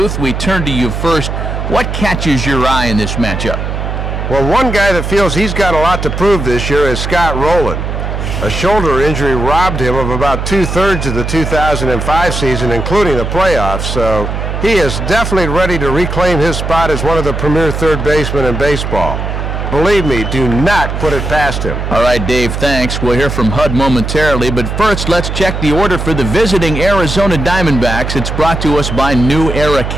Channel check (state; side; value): noise; right; hum, 4 dB below the sound